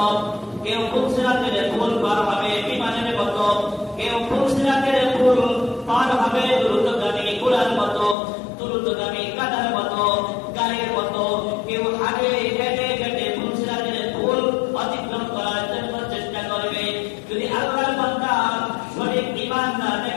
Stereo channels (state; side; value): drops out; right; at 8.2 s